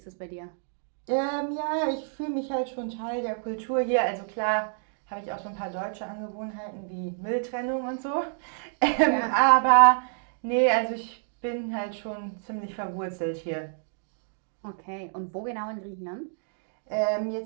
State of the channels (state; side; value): silent; left; digital silence